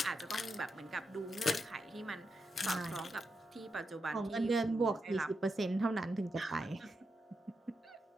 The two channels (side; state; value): both; normal; correlation 0.86